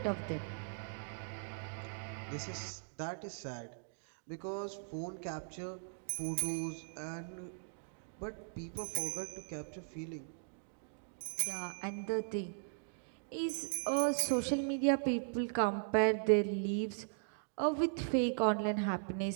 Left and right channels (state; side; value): silent; left; digital silence